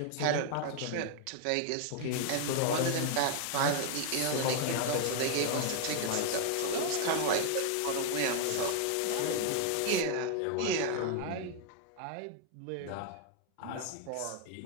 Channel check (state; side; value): different; both; correlation 0.00